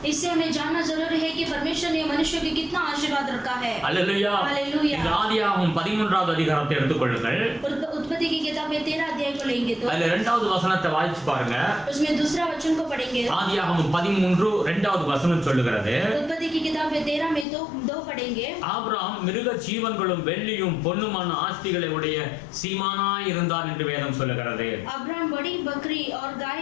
इससे हमें जानना जरूरी है कि परमेश्वर ने मनुष्य को कितना आशीर्वाद रखा है। அல்லேலூயா. हालेलुया। இந்த ஆதியாகமம் 13வது அதிகாரத்தை எடுத்துக்கொள்ளுங்கள். उत्पत्ति की किताब में 13 अध्याय को लेंगे तो அதுல 2வது வசனத்தை வாசிச்சு பாருங்க. उसमें दूसरा वचन को पढ़ेंगे। ஆதியாகமம் 13 2வது வசனம் சொல்லுகிறது. उत्पत्ति की किताब में 13 में तो 2 पढ़ेंगे। ஆபிரகாம் மிருக ஜீவன்களும் வெள்ளியும் பொன்னுமான ஆஸ்திகளை உடைய சீமானாய் இருந்தான் என்று வேதம் சொல்லுகிறது. अब्राहम बड़ी बकरी और गाय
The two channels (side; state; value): right; drops out; at 17.4 s